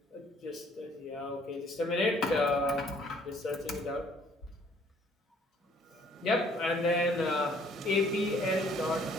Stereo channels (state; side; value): normal; both; correlation 0.60